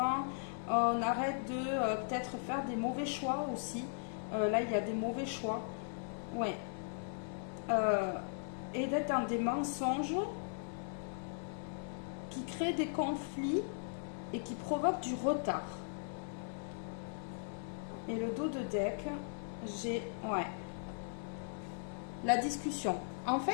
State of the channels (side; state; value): right; silent; digital silence